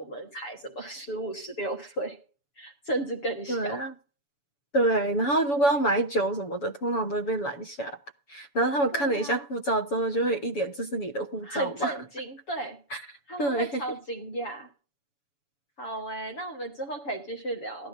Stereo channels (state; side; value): late; right; 7.0 ms